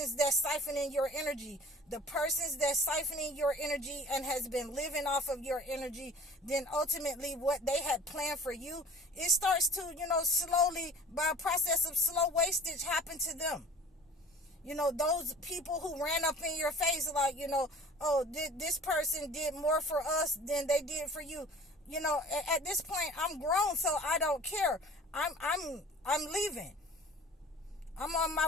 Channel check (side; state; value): both; normal; correlation 0.44